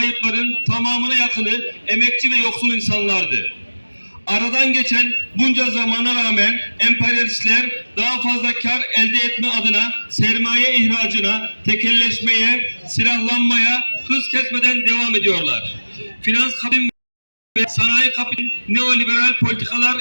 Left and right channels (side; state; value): both; inverted; correlation -1.00